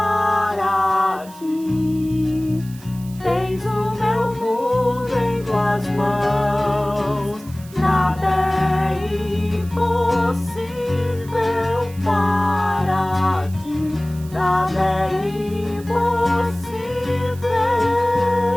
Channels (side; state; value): right; noise; hiss, 21 dB below the sound